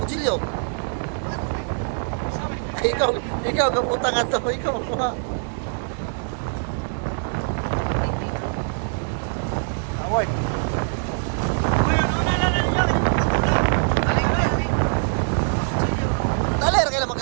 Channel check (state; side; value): silent; left; digital silence